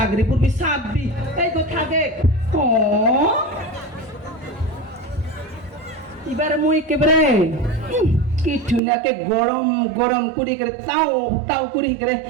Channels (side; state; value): left; drops out; at 8.8 s